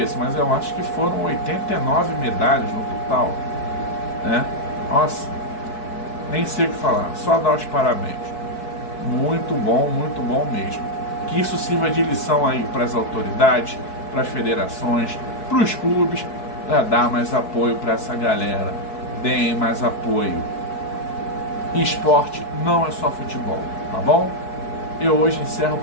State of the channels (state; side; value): late; right; 4.6 ms